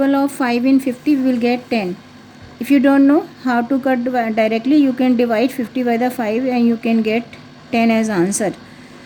of 5 in 50, we will get 10. If you don't know how to cut directly, you can divide 50 by the 5 and you can get 10 as answer.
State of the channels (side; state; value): both; identical; correlation 1.00